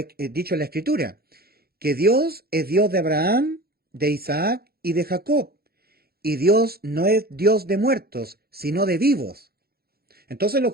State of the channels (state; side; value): late; left; 0.45 ms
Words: dicho en la Escritura, que Dios es Dios de Abraham, de Isaac y de Jacob, y Dios no es Dios de muertos, sino de vivos. Entonces los